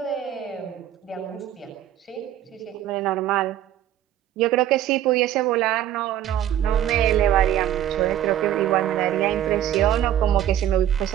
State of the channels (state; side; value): quieter; left; 11.5 dB